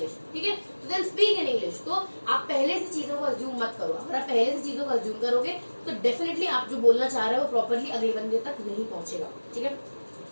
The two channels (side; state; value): both; inverted; correlation -1.00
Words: ठीक है, तो देन स्पीक इन इंग्लिश। तो आप पहले से चीजों को अज्यूम मत करो। अगर आप आप पहले से चीजों को अज्यूम करोगे तो डेफिनेटली आप जो बोलना चाह रहे हो प्रॉपरली अगले बंदे तक नहीं पहुंचेगा, ठीक है।